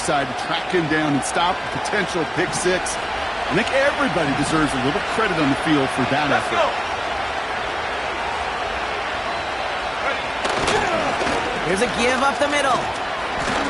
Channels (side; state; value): both; identical; correlation 1.00